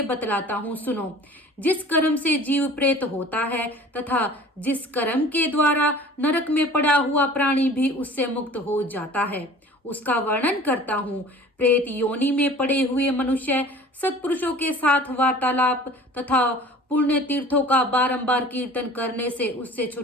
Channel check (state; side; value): normal; both; correlation 0.45